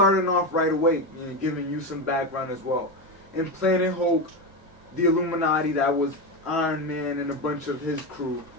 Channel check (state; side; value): normal; both; correlation 0.15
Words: off right away, you know, giving you some background as well. In Planet Hulk, the Illuminati, that was Iron Man and a bunch of his crew,